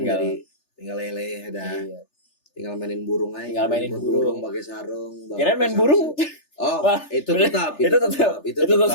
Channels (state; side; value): late; right; 3.3 ms